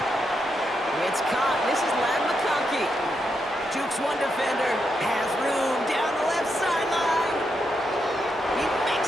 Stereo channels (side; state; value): both; normal; correlation 0.82